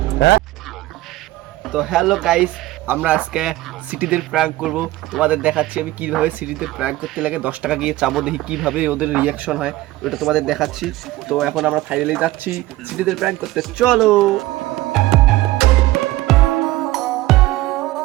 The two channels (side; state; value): left; quieter; 17.2 dB